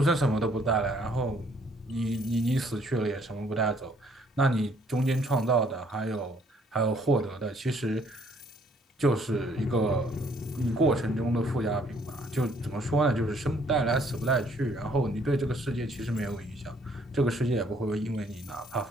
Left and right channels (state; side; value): normal; both; correlation 0.64